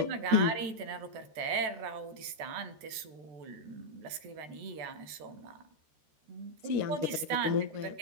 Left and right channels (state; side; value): late; left; 14 ms